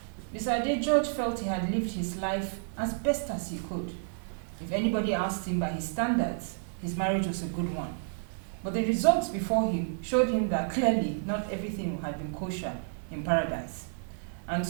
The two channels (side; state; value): left; silent; 57 dB below the other